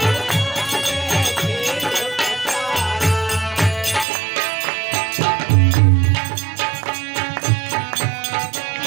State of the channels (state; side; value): drops out; left; at 4.0 s